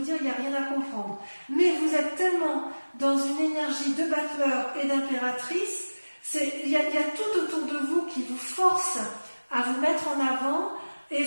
dire, il n'y a rien à comprendre. Mais vous êtes tellement dans une énergie de battleur et d'impératrice, il y a tout autour de vous qui vous force à vous mettre en avant et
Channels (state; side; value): inverted; both; correlation -1.00